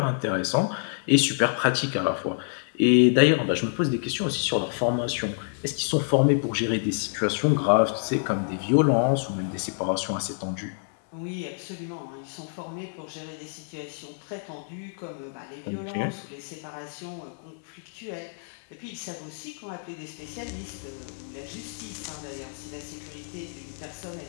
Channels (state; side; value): silent; right; digital silence